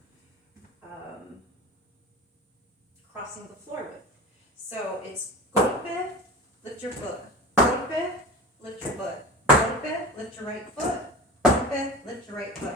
crossing the floor with. So it's golpe, lift your foot, golpe, lift your foot, golpe, lift your right foot, golpe, lift your right foot.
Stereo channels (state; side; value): normal; both; correlation 0.32